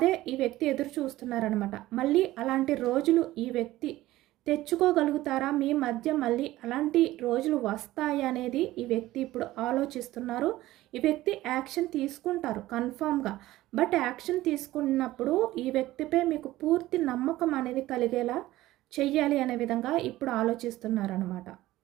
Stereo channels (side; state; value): left; quieter; 16.4 dB